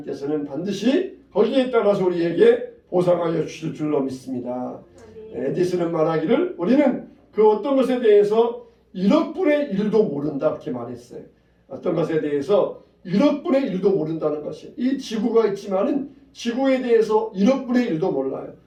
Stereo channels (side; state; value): both; identical; correlation 1.00